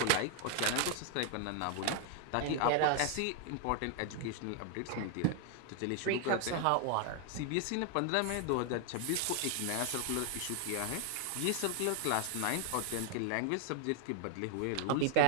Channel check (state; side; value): different; both; correlation 0.00